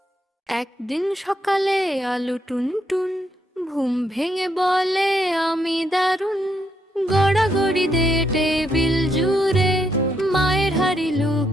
একদিন সকালে আলু টুনটুন ঘুম ভেঙে বলে আমি দারুণ, গড়াগড়ি দে টেবিল জুড়ে, মায়ের হাড়ি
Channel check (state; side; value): normal; both; correlation 0.77